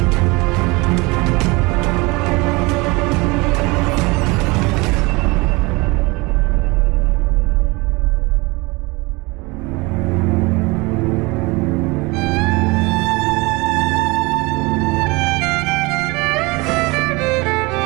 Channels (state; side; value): quieter; left; 25.0 dB